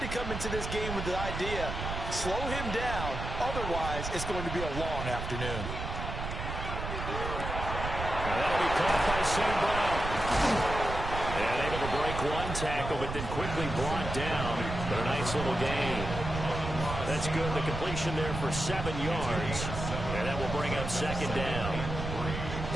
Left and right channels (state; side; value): noise; right; rumble, 5 dB below the sound